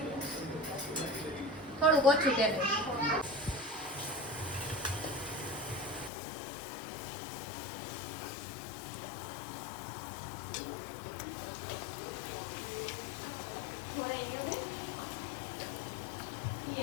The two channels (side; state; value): right; drops out; at 6.1 s